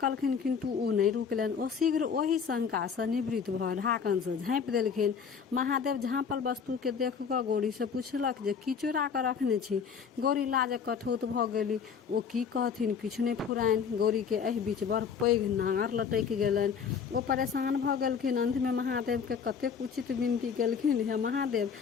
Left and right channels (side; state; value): right; quieter; 6.6 dB